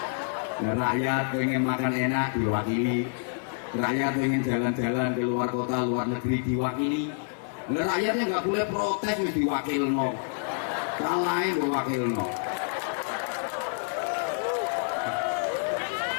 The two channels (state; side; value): silent; right; 59 dB below the other